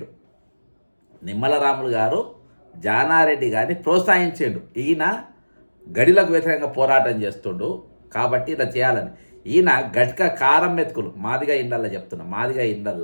నిమ్మల రాములు గారు జానారెడ్డి గారిని ప్రోత్సహించాడు. ఈయన గడిలకు వ్యతిరేకంగా పోరాటం చేస్తుండు కాబట్టి ఇలా చేయాలని. ఈయన గట్క కారం మెతుకులు, మాదిగా ఇండల్లా చెప్తున్నా, మాదిగా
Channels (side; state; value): both; inverted; correlation -1.00